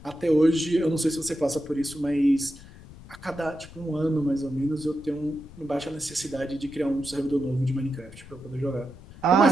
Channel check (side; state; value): left; noise; rumble, 18 dB below the sound